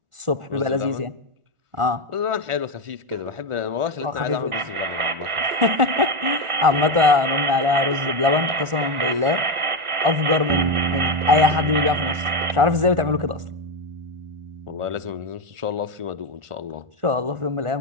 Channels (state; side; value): late; left; 1.4 ms